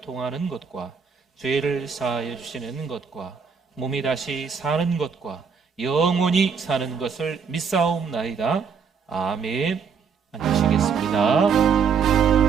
것과 죄를 사하여 주시는 것과 몸이 다시 사는 것과 영원히 사는 것을 믿사옵나이다. 아멘. 앉으시겠습니다.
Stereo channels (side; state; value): left; quieter; 6.1 dB